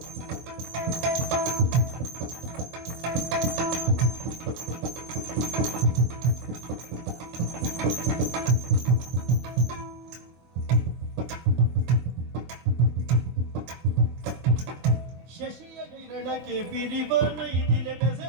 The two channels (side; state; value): left; late; 24 ms